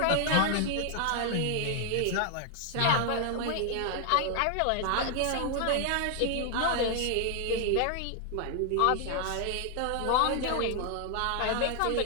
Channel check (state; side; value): different; both; correlation 0.00